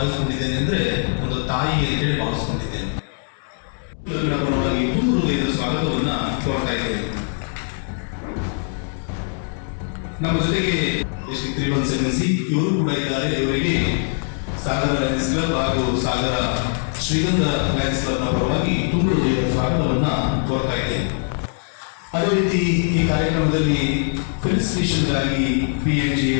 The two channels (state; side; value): silent; right; 56 dB below the other